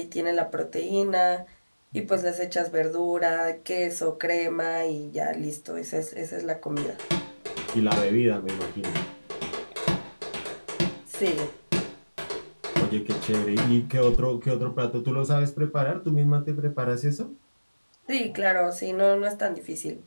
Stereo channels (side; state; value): both; inverted; correlation -1.00